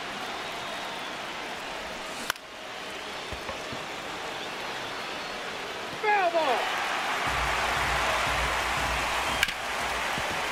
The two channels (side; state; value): both; identical; correlation 1.00